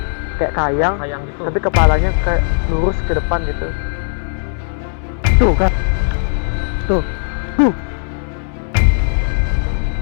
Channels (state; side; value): silent; right; 68 dB below the other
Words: kayak kayang, Kayang gitu. tapi kepalanya kayak lurus ke depan gitu. Tuh kan, tuh.